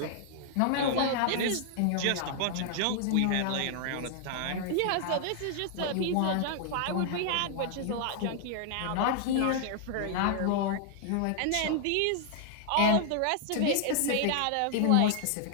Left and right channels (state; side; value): different; both; correlation -0.01